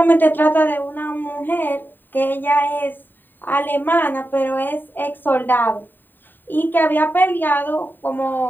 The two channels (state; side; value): late; right; 0.092 ms